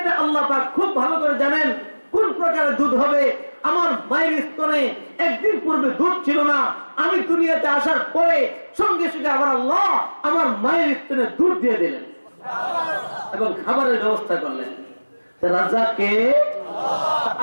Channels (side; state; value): both; inverted; correlation -1.00